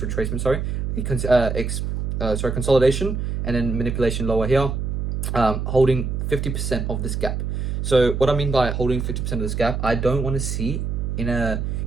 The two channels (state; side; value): noise; right; hum, 2 dB below the sound